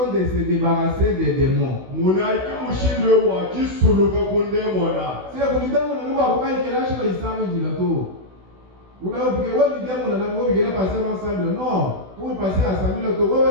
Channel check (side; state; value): left; late; 16 ms